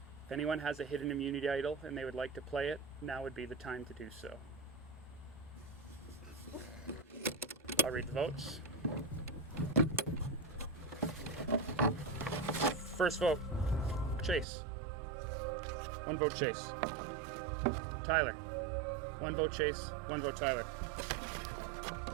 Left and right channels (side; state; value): left; drops out; at 14.5 s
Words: If anyone has a hidden immunity idol and they would like to play it, now would be the time to do so. I'll read the votes. First vote, Chase. 1 vote Chase. Tyler. 1 vote Chase, 1 vote Tyler.